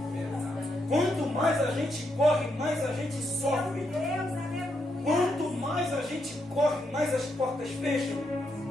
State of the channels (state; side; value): noise; right; hum, 30 dB below the sound